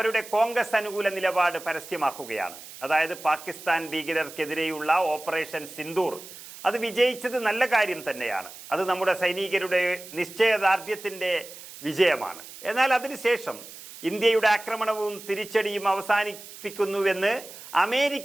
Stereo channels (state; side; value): noise; right; hiss, 16 dB below the sound